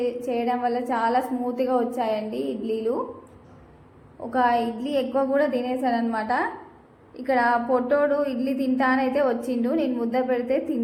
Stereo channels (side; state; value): both; identical; correlation 1.00